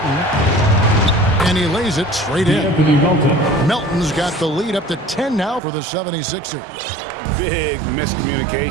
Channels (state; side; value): drops out; left; at 5.6 s